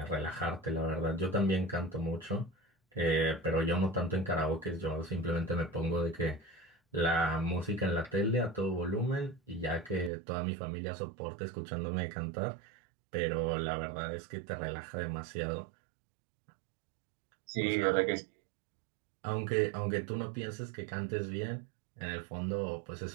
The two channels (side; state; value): left; drops out; at 10.1 s